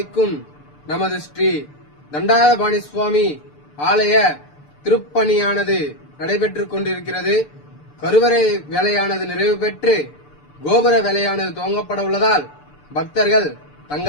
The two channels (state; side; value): late; right; 6.8 ms